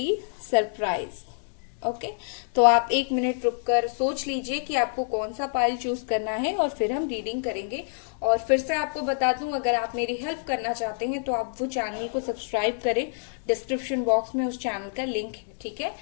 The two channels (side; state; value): right; silent; 60 dB below the other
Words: सरप्राइज। ओके। तो आप 1 मिनट रुककर सोच लीजिए कि आपको कौन सा पाइल चूज करना है और फिर हम रीडिंग करेंगे। और फिर से आपको बता दूं, अगर आप मेरी हेल्प करना चाहते हैं तो आप वो चैनल को सब्सक्राइब करें। डिस्क्रिप्शन बॉक्स में उस चैनल का लिंक है। ठीक है।